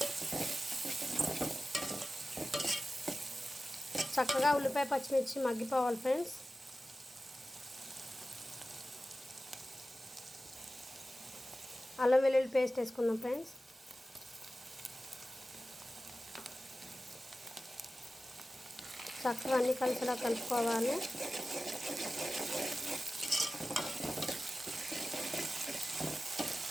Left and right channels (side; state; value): both; normal; correlation 0.95